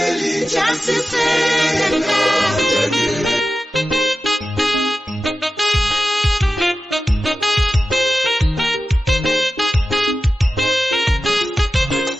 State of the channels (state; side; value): normal; both; correlation 0.93